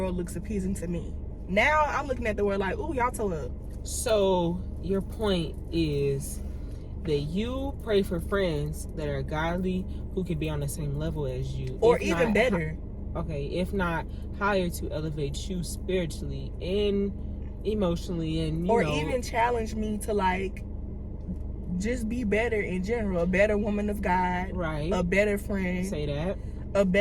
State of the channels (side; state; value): both; identical; correlation 1.00